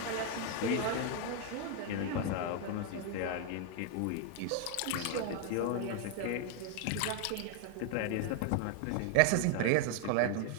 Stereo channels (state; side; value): different; both; correlation 0.00